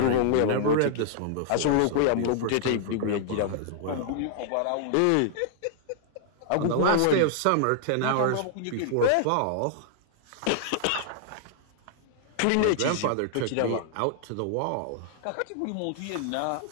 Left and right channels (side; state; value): both; different; correlation -0.01